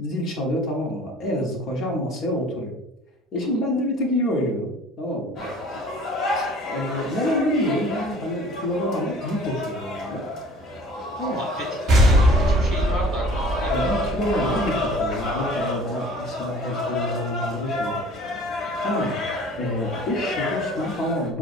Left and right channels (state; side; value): normal; both; correlation 0.48